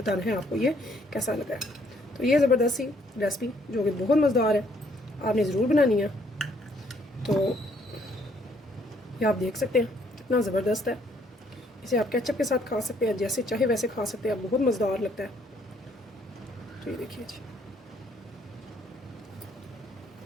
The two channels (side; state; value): both; normal; correlation 0.67